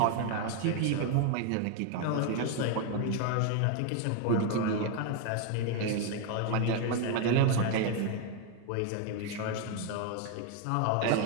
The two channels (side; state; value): both; different; correlation 0.00